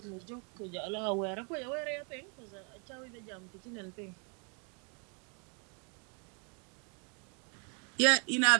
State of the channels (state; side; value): quieter; left; 37.0 dB